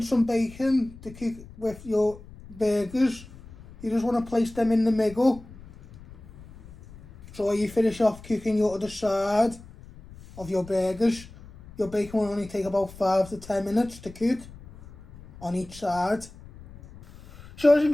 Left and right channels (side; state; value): left; noise; rumble, 19 dB below the sound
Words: some bacon to cook with your burgers. You just want to place them in the middle. So you finish off cooking your other side of your burgers. Your bacon will only take about 5 to 10 minutes to cook on each side. So as you